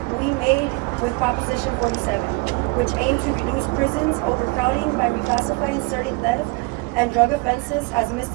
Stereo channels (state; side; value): quieter; left; 27.4 dB